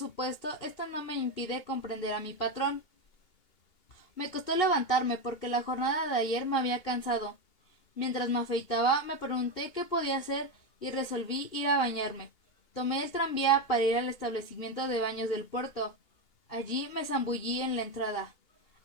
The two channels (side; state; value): right; late; 2.8 ms